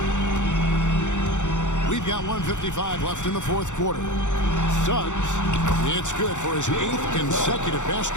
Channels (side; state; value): right; late; 0.85 ms